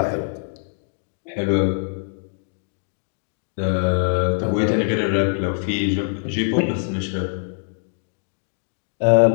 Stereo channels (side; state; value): right; silent; digital silence